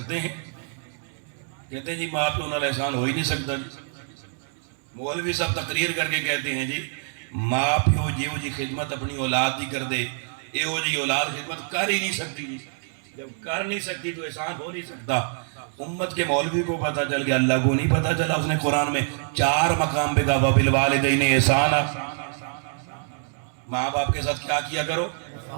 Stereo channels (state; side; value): silent; left; 61 dB below the other